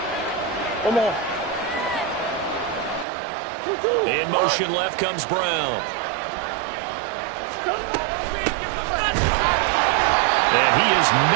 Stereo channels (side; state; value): left; drops out; at 3.1 s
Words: Come on. In motion left comes Brown. And he is